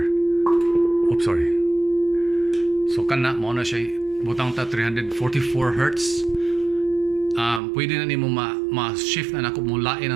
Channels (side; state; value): left; drops out; at 7.6 s